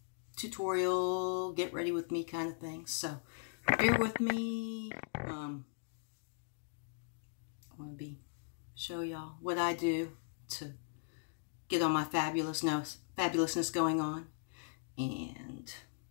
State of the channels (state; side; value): silent; right; digital silence